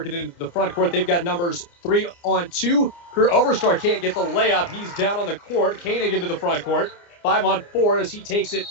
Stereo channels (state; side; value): late; right; 29 ms